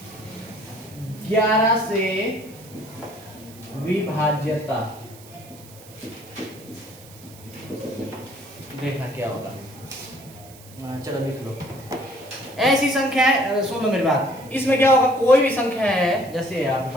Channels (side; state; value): right; noise; hiss, 21 dB below the sound